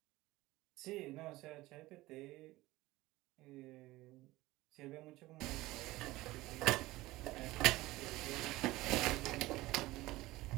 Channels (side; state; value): left; quieter; 18.7 dB